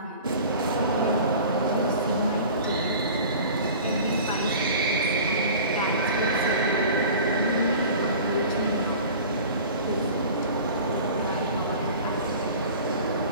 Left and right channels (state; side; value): inverted; both; correlation -0.41